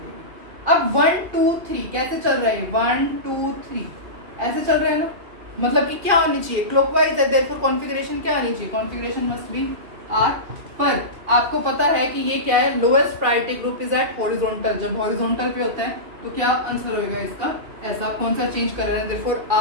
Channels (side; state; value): left; late; 2.4 ms